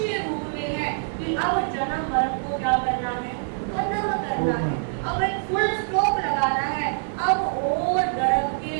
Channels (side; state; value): left; silent; digital silence